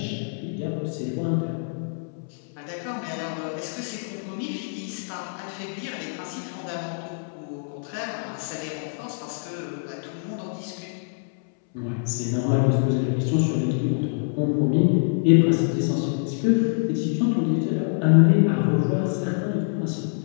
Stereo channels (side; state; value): right; silent; 61 dB below the other